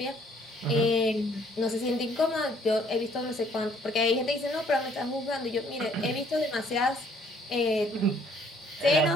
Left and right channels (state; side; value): normal; both; correlation 0.62